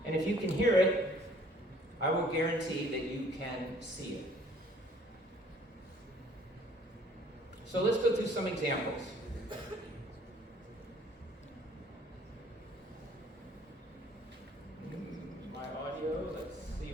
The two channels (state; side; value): normal; both; correlation 0.58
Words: And if you can hear it, I will guarantee that you can see it. So let's go through some examples. My audio, let's see